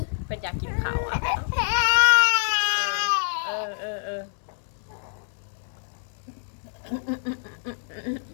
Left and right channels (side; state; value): right; silent; digital silence